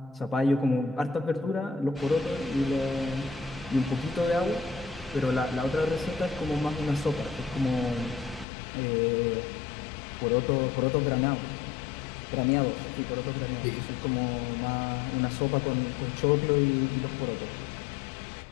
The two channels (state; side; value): drops out; right; at 8.5 s